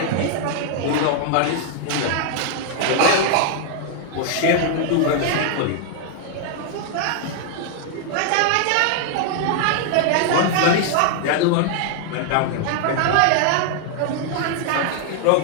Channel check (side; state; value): both; different; correlation 0.00